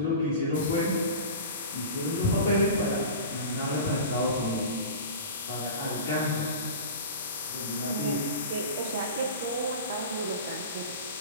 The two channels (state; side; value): inverted; both; correlation -0.32